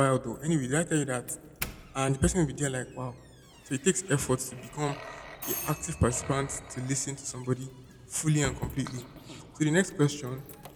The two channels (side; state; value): both; identical; correlation 1.00